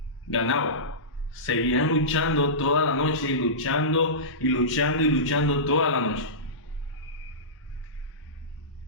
ganaba. Seguían luchando toda la noche y luchando y luchando y luchando toda la noche.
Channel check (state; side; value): normal; both; correlation -0.19